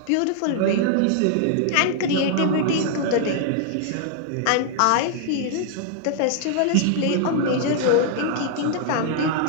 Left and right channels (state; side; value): different; both; correlation 0.00